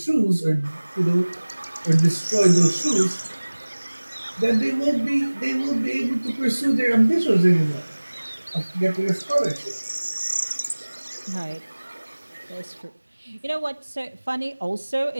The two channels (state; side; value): inverted; both; correlation -1.00